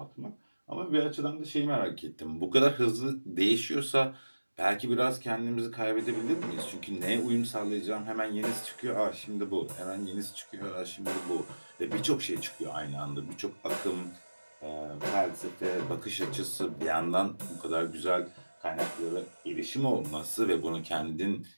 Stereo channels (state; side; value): inverted; both; correlation -1.00